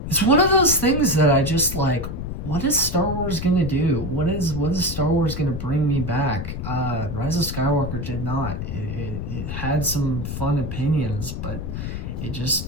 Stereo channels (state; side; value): noise; left; rumble, 5 dB below the sound